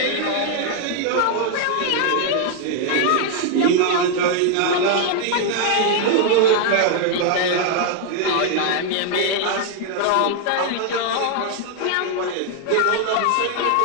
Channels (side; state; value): both; different; correlation 0.00